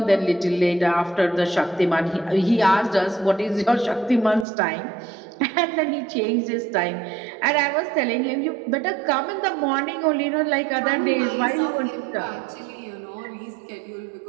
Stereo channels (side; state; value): left; drops out; at 4.5 s